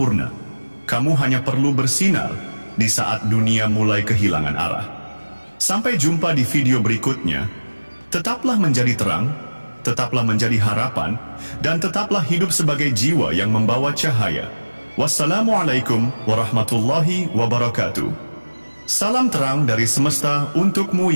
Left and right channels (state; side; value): inverted; both; correlation -1.00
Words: Kamu hanya perlu bersinar di saat dunia mulai kehilangan arah. Sampai jumpa di video berikutnya. Tetaplah menjadi terang, tetaplah menjadi harapan, dan tetaplah hidup sebagai jiwa yang membawa cahaya. Wassalamualaikum warahmatullahi wabarakatuh. Salam terang dari semesta untukmu